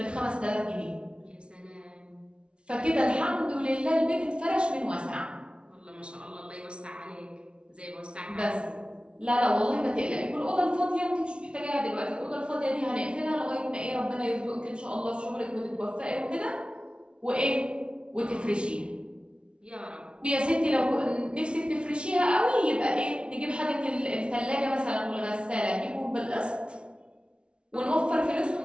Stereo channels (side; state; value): left; late; 0.058 ms